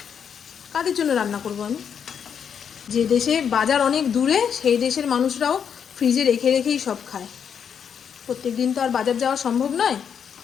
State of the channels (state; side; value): quieter; right; 7.6 dB